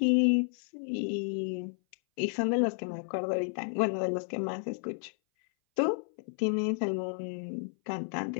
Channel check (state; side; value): silent; right; 57 dB below the other